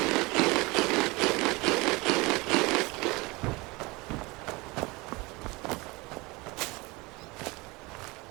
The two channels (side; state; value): left; quieter; 24.4 dB